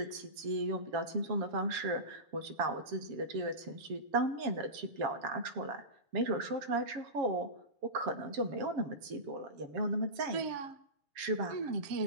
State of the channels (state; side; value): late; left; 7.2 ms